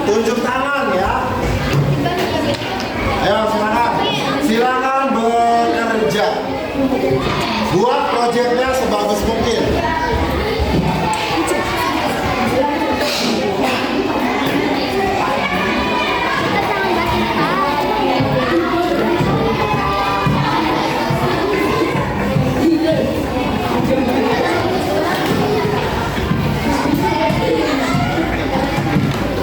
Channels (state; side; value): identical; both; correlation 1.00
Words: tunjuk tangan ya. Ayo silakan bekerja. Buat proyeknya sebagus mungkin.